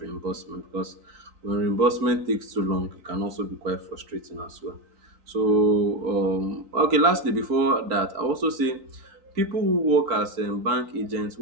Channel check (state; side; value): late; left; 3.8 ms